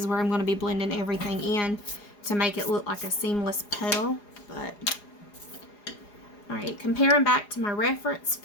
where I'm going to be blending everything in to make it look like a seamless petal. But alright, comparing back to my reference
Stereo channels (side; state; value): right; late; 4.8 ms